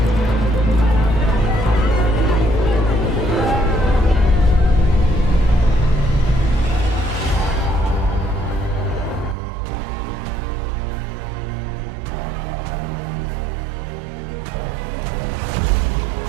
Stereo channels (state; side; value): drops out; left; at 9.3 s